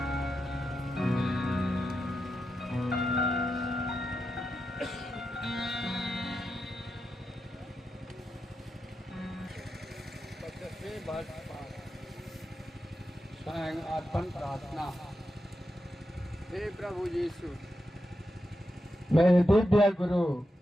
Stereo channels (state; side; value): normal; both; correlation 0.87